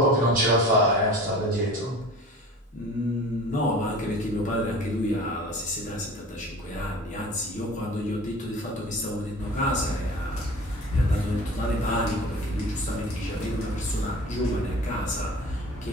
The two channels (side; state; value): both; normal; correlation 0.41